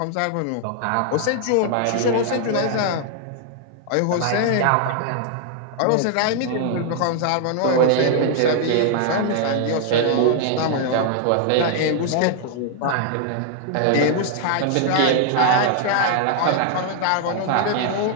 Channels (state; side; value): different; both; correlation 0.00